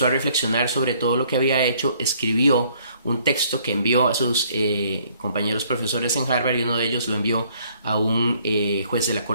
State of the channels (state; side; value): inverted; both; correlation -0.63